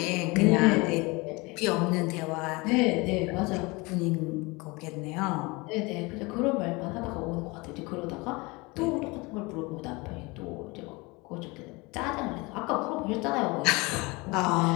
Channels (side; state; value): right; quieter; 25.1 dB